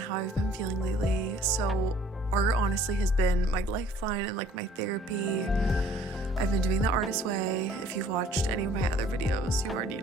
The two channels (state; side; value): normal; both; correlation 0.55